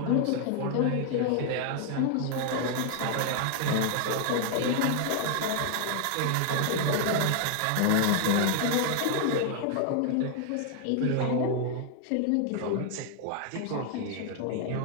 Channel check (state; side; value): different; both; correlation 0.00